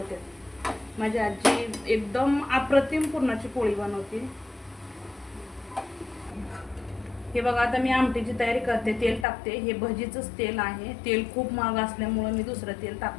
माझी आजी एकदम अप्रतिम पुरणाची पोळी बनवते. हे बघा आता मी आमटीची तयारी करते. तेल टाकते. हे भजीचंच तेल आहे. तेल खूप महाग असल्यामुळं मी दुसरं तेल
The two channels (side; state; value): right; drops out; at 9.2 s